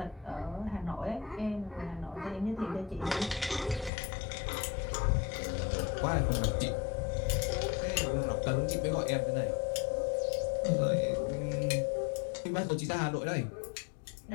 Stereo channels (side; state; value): right; drops out; at 3.9 s